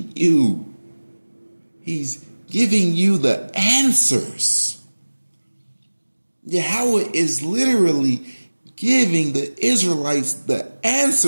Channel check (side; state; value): both; inverted; correlation -1.00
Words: you. He's giving you the answers. Yahweh is literally giving the Israelites the